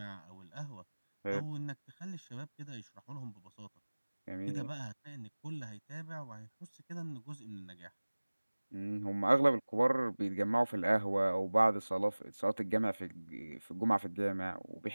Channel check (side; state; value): both; inverted; correlation -1.00